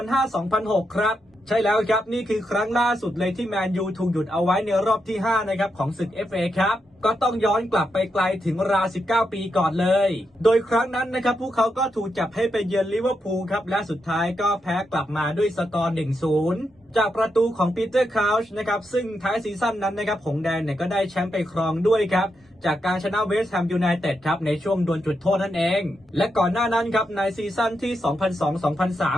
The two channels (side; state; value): both; normal; correlation 0.84